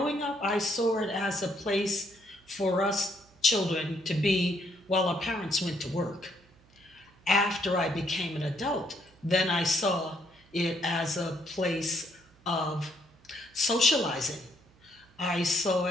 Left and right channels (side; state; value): right; noise; hum, 29 dB below the sound